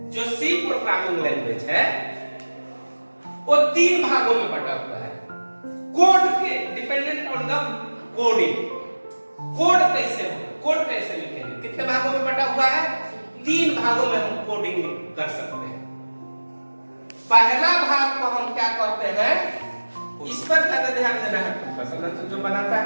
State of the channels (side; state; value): both; inverted; correlation -1.00